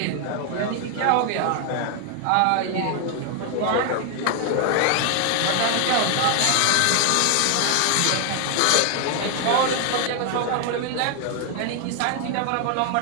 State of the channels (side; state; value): both; different; correlation 0.00